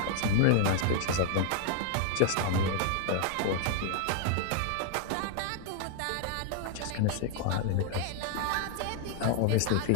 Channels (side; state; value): both; different; correlation 0.00